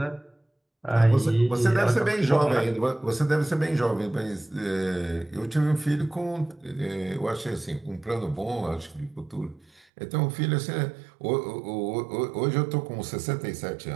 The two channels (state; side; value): drops out; left; at 9.8 s